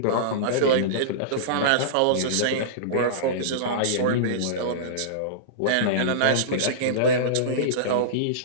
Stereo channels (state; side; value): different; both; correlation -0.04